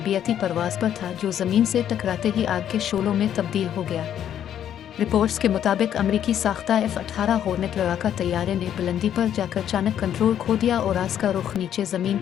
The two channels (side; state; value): right; quieter; 10.1 dB